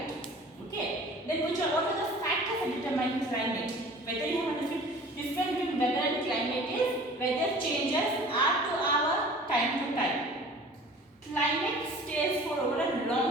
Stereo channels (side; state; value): both; normal; correlation 0.45